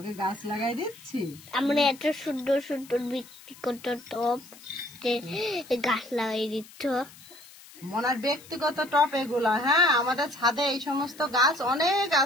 গাছ লাগাই দিচ্ছি। আমরা এত সুন্দর সুন্দর ব্যক্তিগত টপ গাছ লাগাই দিচ্ছ। মনার ব্যক্তিগত টপ এগুলা। হ্যাঁ, আমাদের ছাদে এই সমস্ত গাছ অনেক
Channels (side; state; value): left; noise; hiss, 21 dB below the sound